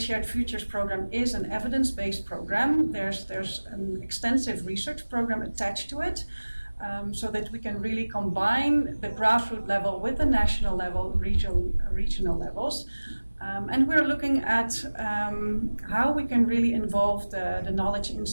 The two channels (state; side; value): inverted; both; correlation -1.00